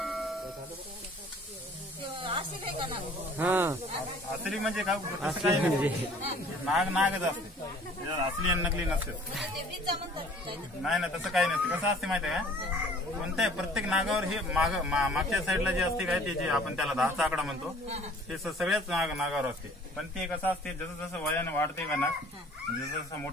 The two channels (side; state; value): both; normal; correlation 0.52